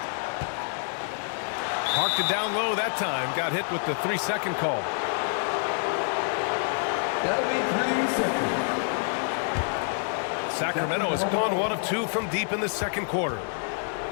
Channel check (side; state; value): right; silent; 60 dB below the other